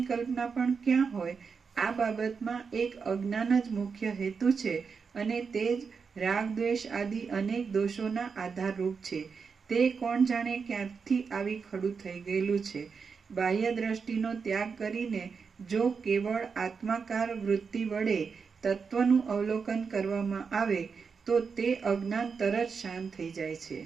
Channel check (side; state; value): left; quieter; 5.5 dB